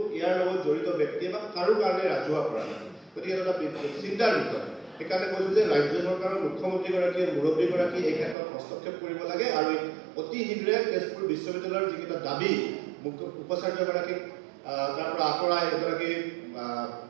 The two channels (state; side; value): drops out; left; at 8.3 s